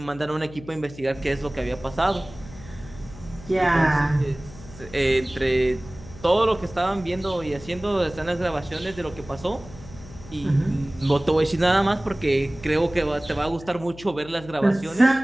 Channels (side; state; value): left; noise; hum, 17 dB below the sound